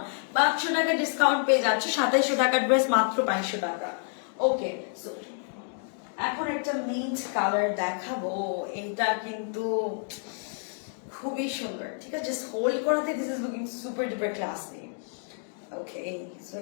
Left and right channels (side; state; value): right; silent; 57 dB below the other